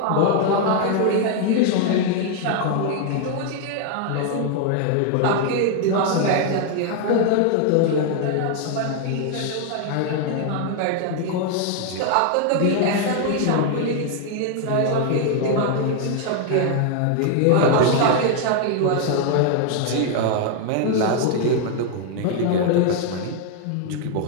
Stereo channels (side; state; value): both; different; correlation 0.00